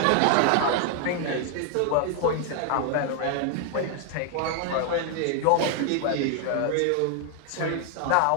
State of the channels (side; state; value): both; different; correlation 0.00